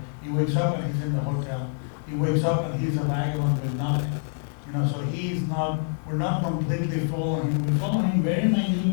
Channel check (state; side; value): silent; right; digital silence